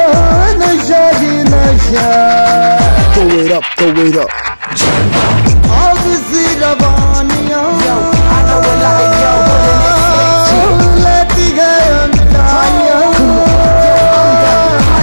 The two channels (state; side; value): inverted; both; correlation -1.00